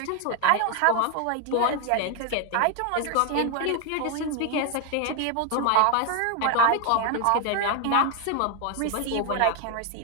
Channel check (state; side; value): different; both; correlation 0.01